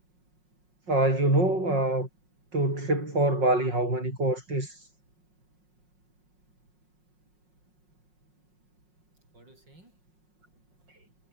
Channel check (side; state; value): left; late; 5.5 ms